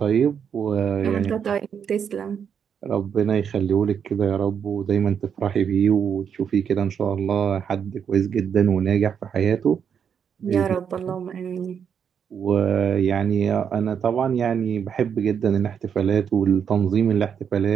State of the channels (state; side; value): quieter; left; 7.6 dB